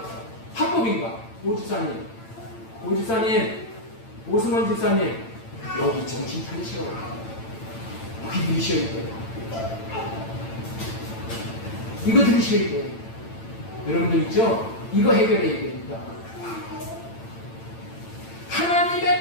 합법인가? 오집사님, 오승원 집사님, 여기 정신 차리셔. 여기 들으셔야 돼요. 이거 들으셔야 돼요. 여러분들 있죠? 이거 해결해야 됩니다.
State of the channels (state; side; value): late; right; 8.9 ms